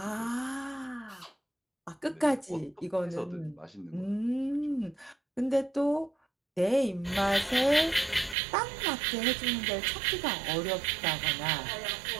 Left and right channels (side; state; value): left; drops out; at 8.3 s